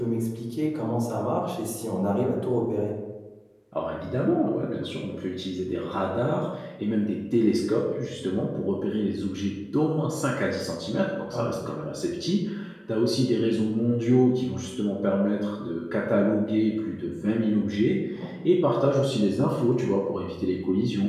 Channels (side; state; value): both; identical; correlation 1.00